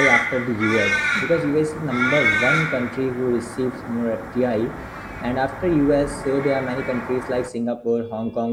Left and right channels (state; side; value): identical; both; correlation 1.00